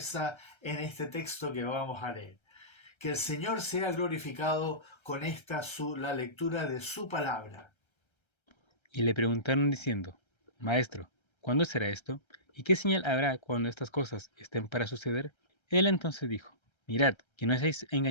en este texto que vamos a leer. Que el Señor sea glorificado con la lectura de su palabra. Y le preguntaron diciendo: Maestro, ¿cuándo será esto? ¿Y qué señal habrá cuando estas cosas estén para suceder? Él entonces dijo: Mirad, que no seáis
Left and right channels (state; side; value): late; right; 1.3 ms